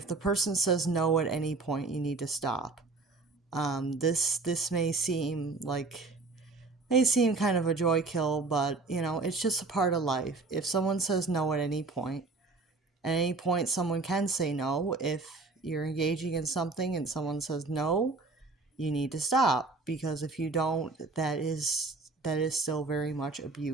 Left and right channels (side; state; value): left; quieter; 3.6 dB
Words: the person says no at any point, you need to stop. This may seem kind of a joy kill, but it's just a part of life. If someone says no at any point someone can say no. If you're engaging in something and someone says no, you need to stop, because if you don't, that is still very much